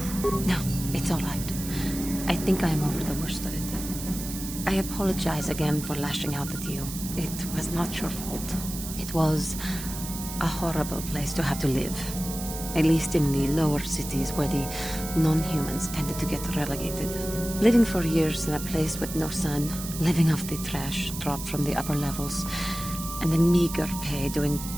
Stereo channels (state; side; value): noise; right; hiss, 9 dB below the sound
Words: No, it's all right. I think I am over the worst of it. I apologize again for lashing out at you. It was not your fault. It was a horrible place to have to live. At least in the lower cities where the non-humans tended to get relegated. Living for years in a place with no sun, living off the trash dropped from the upper levels, and the meager pay doing